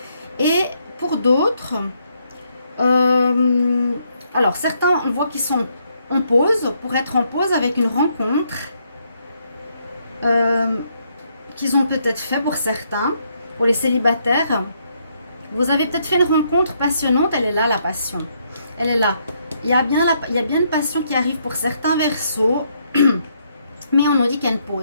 Et pour d'autres, alors certains, on voit qu'ils sont en pause, pour être en pause avec une rencontre qu'ils ont peut-être fait pour certains, pour les célibataires. Vous avez peut-être fait une rencontre passionnante, elle est là la passion, elle est là. Il y a bien une passion qui arrive pour certains Verseaux, mais on nous dit qu'il y a une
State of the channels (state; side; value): inverted; both; correlation -0.74